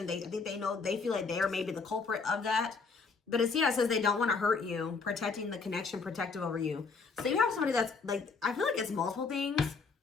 I think they know, they feel like they are maybe the culprit of that. But it's, yeah, it says they don't want to hurt you, protecting the connection, protective over you. So you have somebody that's like, I feel like it's multiple things.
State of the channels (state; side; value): quieter; right; 4.7 dB